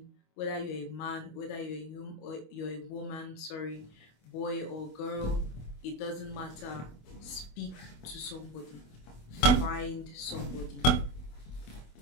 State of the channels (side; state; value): right; late; 24 ms